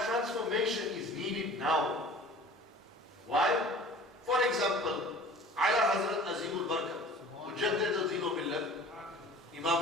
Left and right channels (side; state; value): both; normal; correlation 0.45